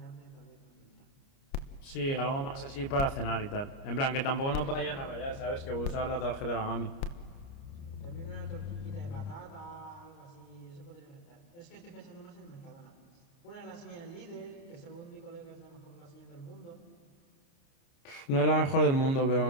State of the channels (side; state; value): right; late; 29 ms